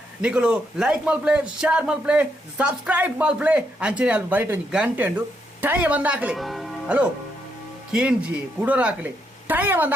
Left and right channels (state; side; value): normal; both; correlation 0.78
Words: ನಿಖಲು ಲೈಕ್ ಮಲ್ಪ್ಲೆ ಶೇರ್ ಮಲ್ಪ್ಲೆ ಸಬ್ಸ್ಕ್ರೈಬ್ ಮಲ್ಪ್ಲೆ ಅಂಚನೆ ಅಲ್ಲಿ ಬರೀಟ್ ಒಂದು ಗಂಟೆ ಉಂಡು ಟೈಮ್ ಬಂದು ಹಾಕಲಿ ಹಲೋ ಕೇಂಜಿ ಕುಡೋರು ಹಾಕಲಿ ಟೈಮ್ ಬಂದು